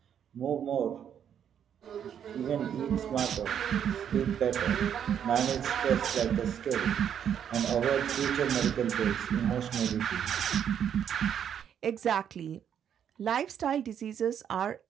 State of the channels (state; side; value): quieter; left; 8.8 dB